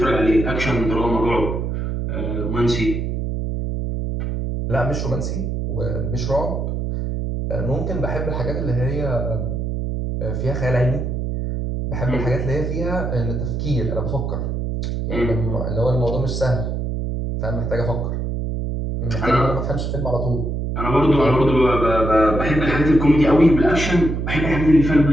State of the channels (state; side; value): noise; right; hum, 2 dB below the sound